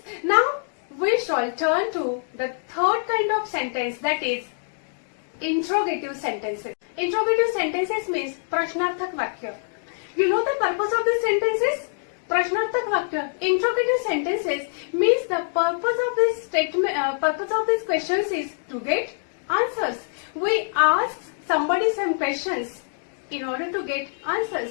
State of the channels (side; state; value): right; silent; digital silence